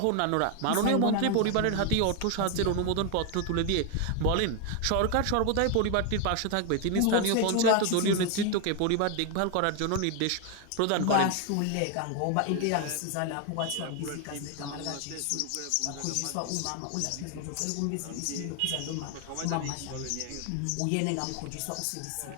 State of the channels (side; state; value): both; different; correlation 0.01